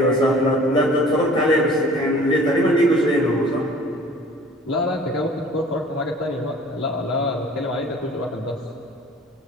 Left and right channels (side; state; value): both; normal; correlation 0.48